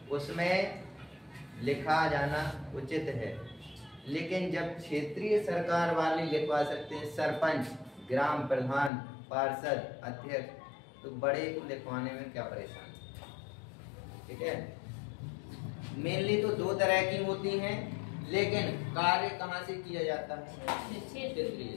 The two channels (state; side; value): drops out; right; at 8.9 s